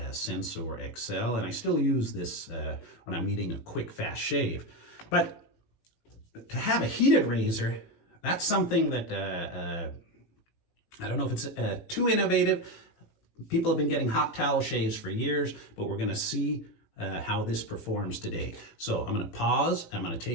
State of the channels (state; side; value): late; right; 18 ms